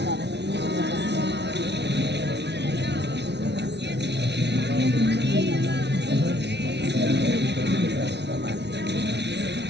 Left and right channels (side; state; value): left; late; 0.50 ms